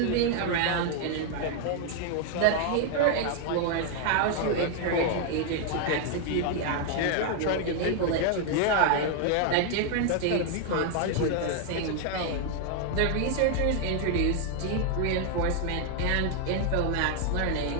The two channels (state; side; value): different; both; correlation 0.00